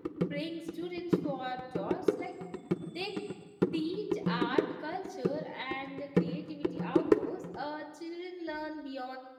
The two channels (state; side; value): identical; both; correlation 1.00